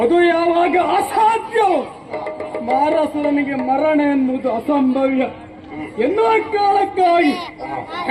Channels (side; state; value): both; identical; correlation 1.00